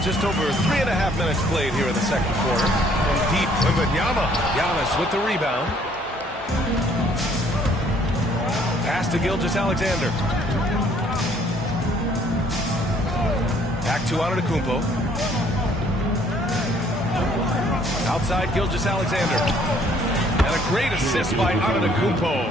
just over 3.5 minutes played here in the second quarter. From deep, Wembanyama. Giannis with the rebound. Pass to Gilgeous-Alexander. Back to Antetokounmpo. Outside Gilgeous-Alexander. And a great assist by Antetokounmpo.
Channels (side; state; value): both; normal; correlation 0.62